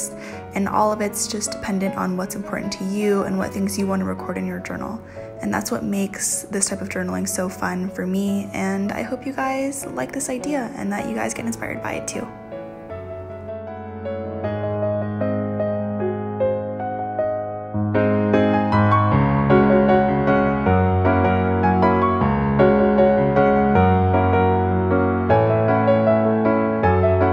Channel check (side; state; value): both; identical; correlation 1.00